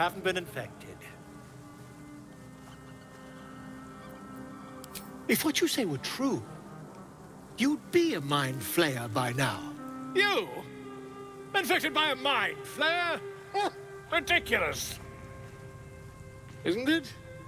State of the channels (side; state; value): both; identical; correlation 1.00